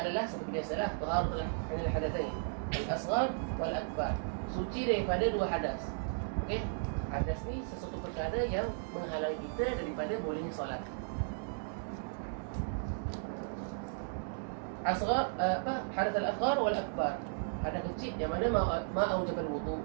adalah seperti biasalah, taharatul anil hadatsain, al-asghar wal akbar. Suci daripada 2 hadas. Okey. hadas ni sesuatu perkara yang menghalangi kita daripada bolehnya solat. Asghar hadath al-asghar wal akbar. Hadas kecil yang mana ma aujabal wudu.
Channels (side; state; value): left; silent; digital silence